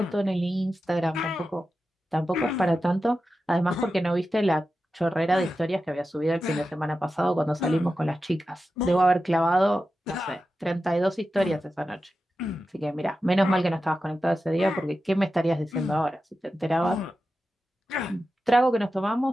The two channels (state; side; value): normal; both; correlation 0.92